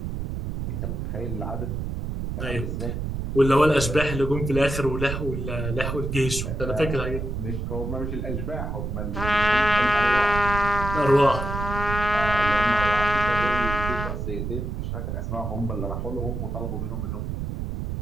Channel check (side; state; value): right; noise; rumble, 4 dB below the sound